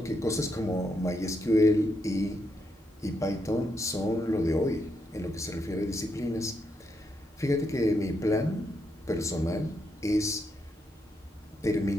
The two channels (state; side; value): normal; both; correlation 0.80